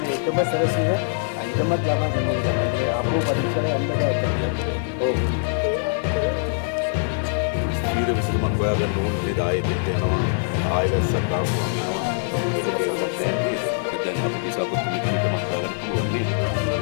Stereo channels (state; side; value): silent; right; digital silence